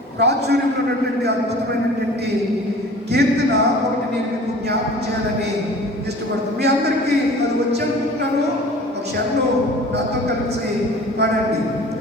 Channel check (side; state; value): both; normal; correlation 0.44